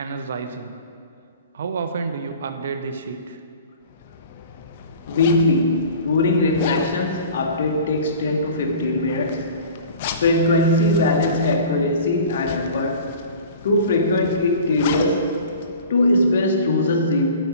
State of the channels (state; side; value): inverted; both; correlation -0.43